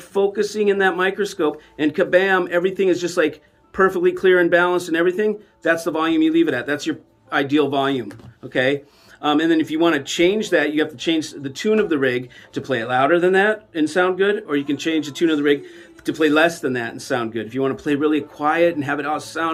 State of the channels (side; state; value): both; identical; correlation 1.00